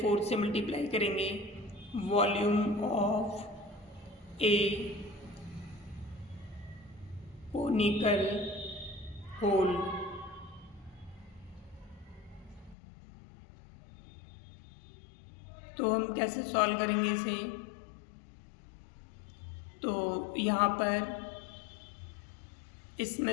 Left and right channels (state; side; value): drops out; right; at 12.8 s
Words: 4 से मल्टीप्लाई करेंगे volume of a conical hole. तो हम कैसे सॉल्व करेंगे इसे, तो यहाँ पर